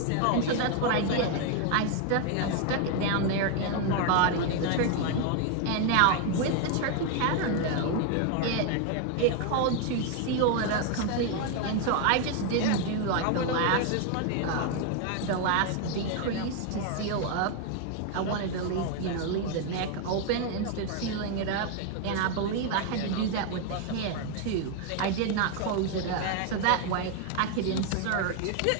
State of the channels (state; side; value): different; both; correlation 0.01